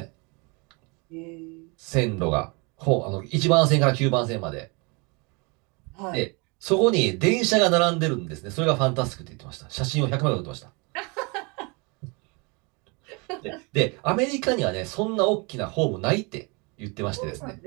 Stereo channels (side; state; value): left; quieter; 30.1 dB